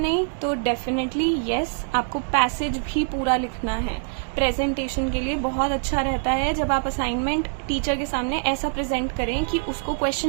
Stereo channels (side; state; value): left; silent; digital silence